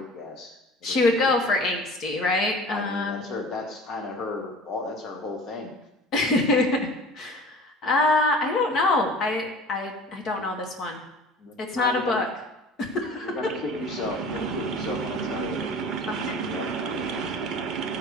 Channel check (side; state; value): both; normal; correlation 0.41